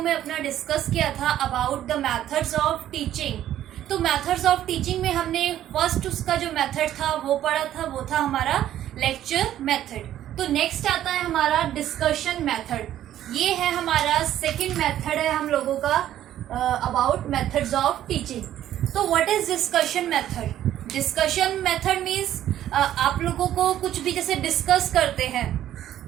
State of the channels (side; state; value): left; quieter; 12.0 dB